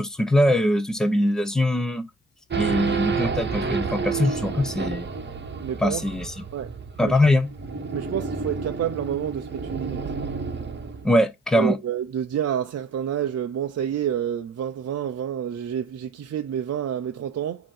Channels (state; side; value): normal; both; correlation 0.62